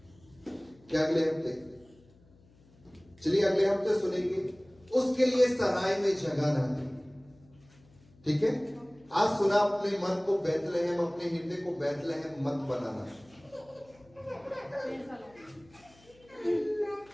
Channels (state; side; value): noise; left; hum, 28 dB below the sound